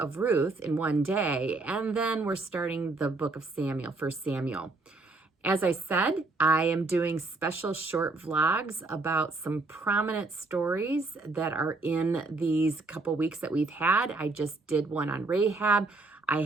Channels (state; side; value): quieter; left; 3.4 dB